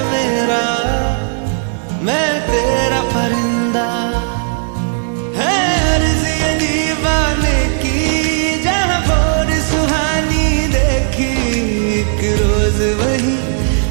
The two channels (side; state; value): left; silent; 67 dB below the other